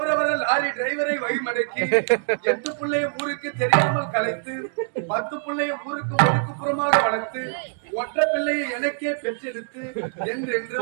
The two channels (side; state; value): left; silent; digital silence